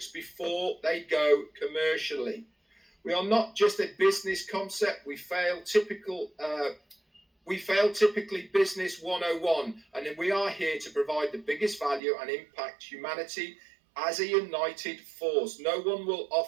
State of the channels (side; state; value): left; drops out; at 12.0 s